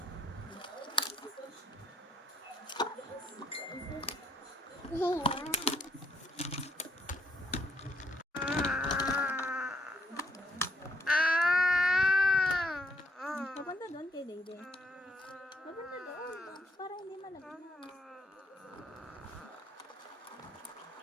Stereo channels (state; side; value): normal; both; correlation 0.71